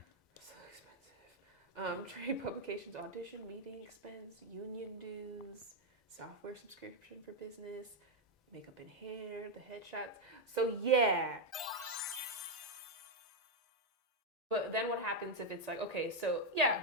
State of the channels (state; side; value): normal; both; correlation 0.02